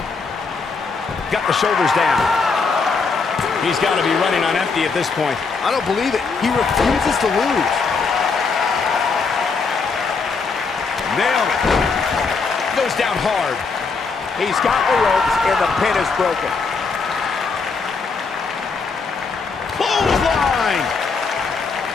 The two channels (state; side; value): quieter; right; 4.7 dB